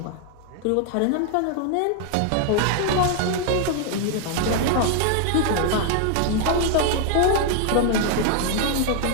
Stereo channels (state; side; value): different; both; correlation 0.00